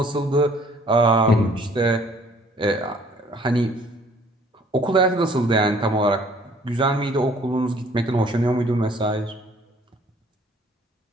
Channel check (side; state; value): both; normal; correlation 0.57